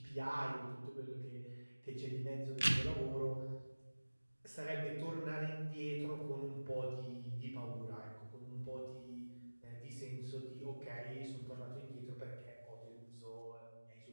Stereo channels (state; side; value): inverted; both; correlation -1.00